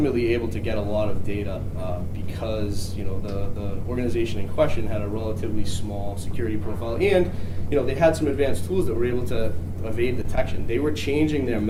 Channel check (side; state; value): both; identical; correlation 1.00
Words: able to get a lot of data because the organization in question had a relatively small security profile, and they had some advanced tools that were able to evade detection. They were changing their